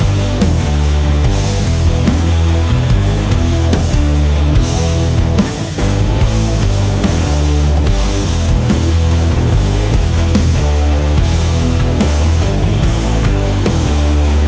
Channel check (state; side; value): identical; both; correlation 1.00